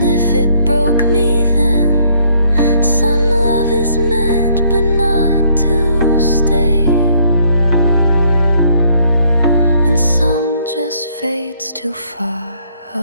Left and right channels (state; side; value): inverted; both; correlation -0.66